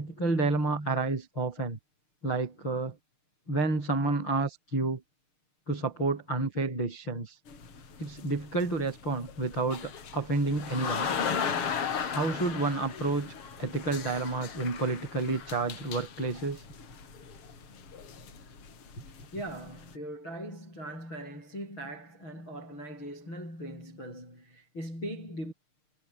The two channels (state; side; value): late; right; 6.6 ms